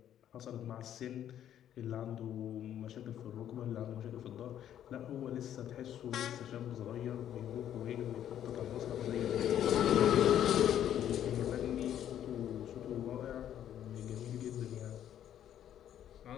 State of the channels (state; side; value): quieter; right; 10.6 dB